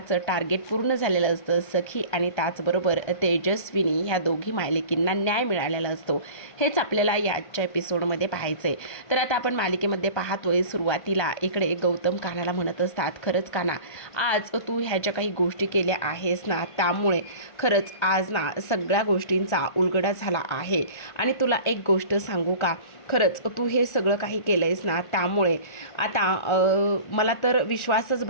टार्गेट पूर्ण झालेलं असतं. सखी आणि त्याचबरोबर तेजस्विनी ह्या दोघी मालिकींना न्याय मिळालेला असतो. हेच आपल्याला याच्या एपिसोडमध्ये पाहायचं आहे. तर आता आपण मालिकेमध्ये पाहतोय सुरुवातीला इकडे गौतम कान्हाला म्हणत असतात, खरंच कान्हा, आज तू ह्या ज्या काही गोष्टी केल्या आहेस ना, त्यामुळे खरंच आज ना सगळ्या गोष्टींचा उलगडा झाला आहे. आणि तुला एक गोष्ट सांगू का, खरंच तू हे सगळं काही केलं आहेस ना, त्यामुळे आता मला तर विश्वासच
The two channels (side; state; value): right; late; 1.5 ms